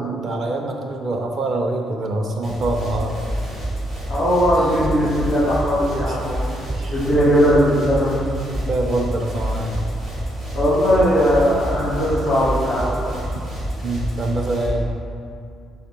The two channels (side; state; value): both; normal; correlation 0.76